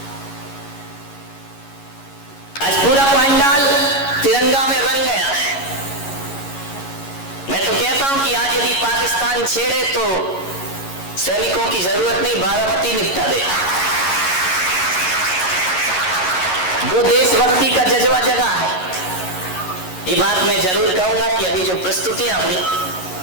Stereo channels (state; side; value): late; right; 11 ms